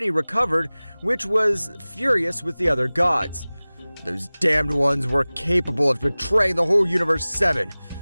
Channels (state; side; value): inverted; both; correlation -0.99